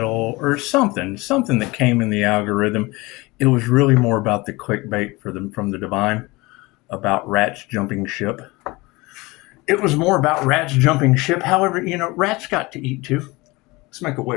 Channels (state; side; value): quieter; right; 22.8 dB